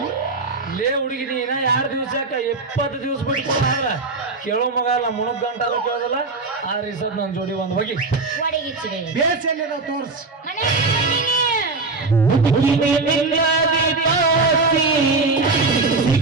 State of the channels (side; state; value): left; quieter; 3.7 dB